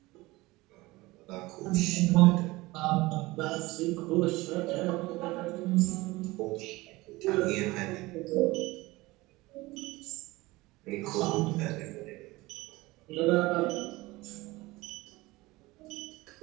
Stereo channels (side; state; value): left; quieter; 20.7 dB